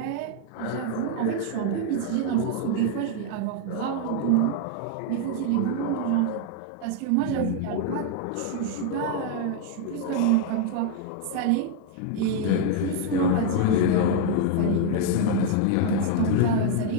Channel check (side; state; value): both; different; correlation 0.00